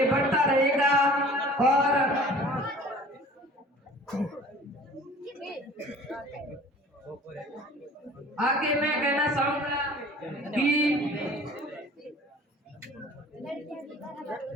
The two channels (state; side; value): normal; both; correlation 0.47